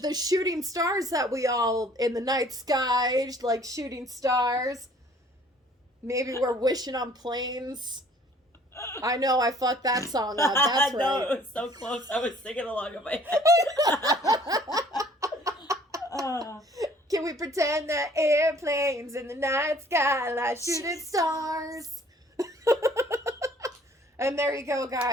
shooting stars that we all in the night sky, like shooting stars. Maybe we're wishing on planes. I know I fucked that song up. That's right. No, it was so close. I was singing along in my head. Can we pretend that airplanes in the night sky like shooting stars? And there you go,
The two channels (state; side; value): normal; both; correlation 0.56